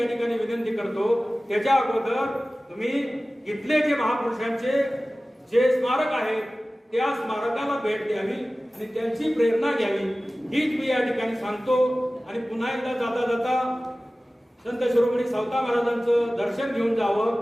ठिकाणी विनंती करतो. त्याच्या अगोदर तुम्ही इथले जे महापुरुषांचे जे स्मारक आहे त्या स्मारकाला भेट द्यावी आणि त्यांची प्रेरणा घ्यावी, हीच मी या ठिकाणी सांगतो. आणि पुन्हा एकदा जाता जाता संत शिरोमणी सावता महाराजांचं दर्शन घेऊन जावं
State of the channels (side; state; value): both; normal; correlation 0.97